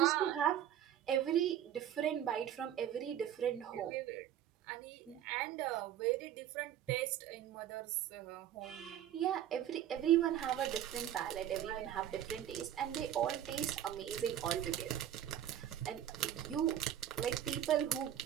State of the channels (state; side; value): quieter; left; 10.8 dB